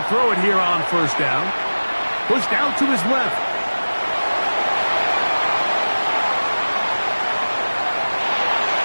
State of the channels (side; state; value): both; inverted; correlation -1.00